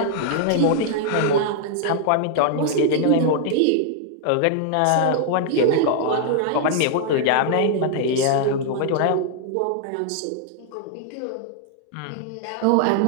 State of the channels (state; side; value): different; both; correlation -0.01